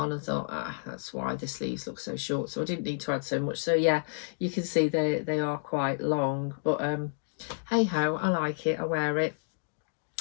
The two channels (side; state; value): right; silent; digital silence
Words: and thought, that's why the sleeves look so short. So I didn't need to add so much. So yeah, you can see they are quite long, but hey ho, I like it, I wear it.